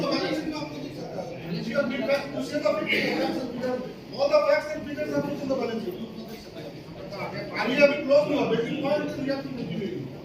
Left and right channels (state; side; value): identical; both; correlation 1.00